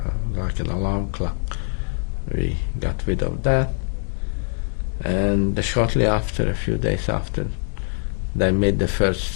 like an alarm clock. We got rid of that. And shortly after, a few days after, they made the first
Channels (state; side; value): silent; right; 63 dB below the other